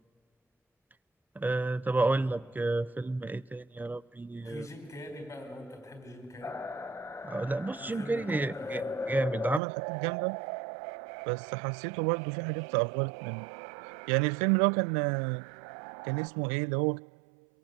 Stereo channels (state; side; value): drops out; left; at 9.6 s